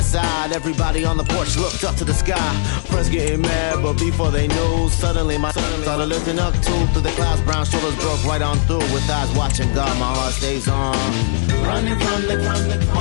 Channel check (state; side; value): silent; right; 64 dB below the other